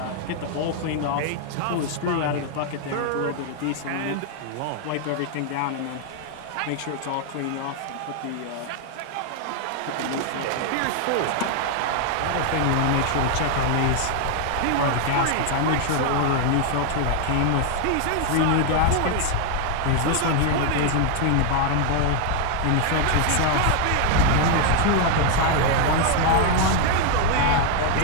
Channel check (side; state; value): both; different; correlation 0.00